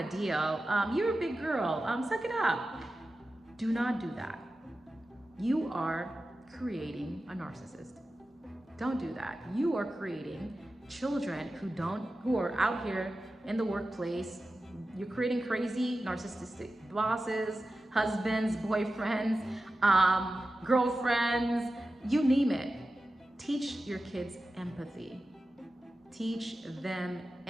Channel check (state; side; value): normal; both; correlation 0.93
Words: deal. You're a big girl. Suck it up. Do not do that. You are creating a narcissist. Don't do that. You are creating children who are out here in the workplace. You're creating crazy narcissistic bosses, husbands, boyfriends, girlfriends, you name it. Teach your kids empathy. Teach them